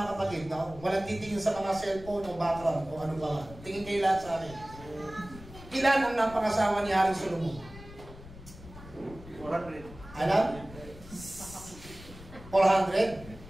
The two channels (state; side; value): noise; left; rumble, 16 dB below the sound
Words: kapatid, no? Walang titingin sa mga cellphone o background o ano ba. Tingin kayo lahat sa akin. Ilan ang napangasawa ni Haring Solomon? 400. Alam? 400?